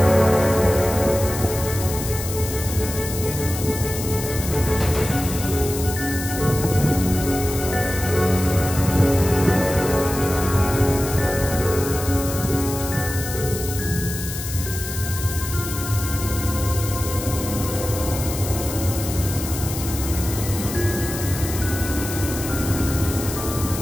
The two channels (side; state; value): left; noise; hiss, 8 dB below the sound